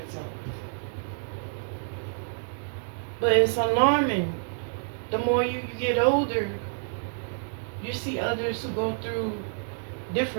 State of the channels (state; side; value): silent; left; digital silence